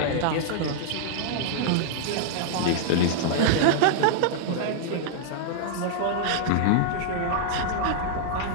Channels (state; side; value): different; both; correlation -0.01